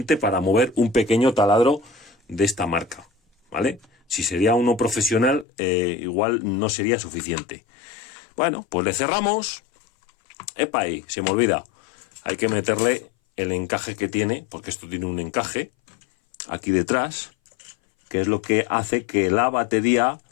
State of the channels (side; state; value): right; drops out; at 5.5 s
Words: para mover un pequeño taladro de esta marca, ¿vale? Si sería uno profesional, igual no sería suficiente. Bueno, pues le cerramos. ¡Epa! Ahí, se me olvida. Hay que meterle el encaje que tiene, porque esto tiene un encaje aquí detrás, que es lo que hace que la batería